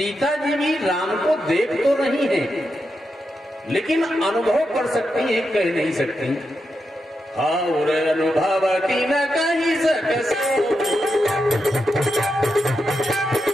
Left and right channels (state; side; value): normal; both; correlation 0.86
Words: जी भी राम को देख तो रही हैं, लेकिन अनुभव कर सकती हैं, कह नहीं सकती। और अनुभव की न कही सक